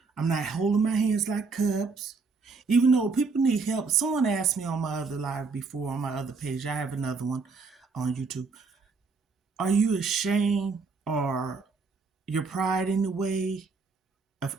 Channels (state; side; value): quieter; left; 4.5 dB